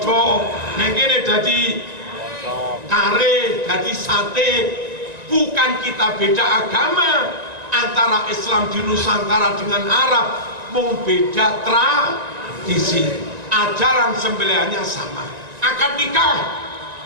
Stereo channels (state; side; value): late; left; 1.9 ms